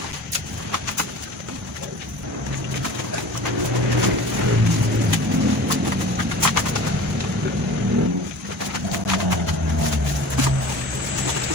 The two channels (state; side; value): normal; both; correlation 0.40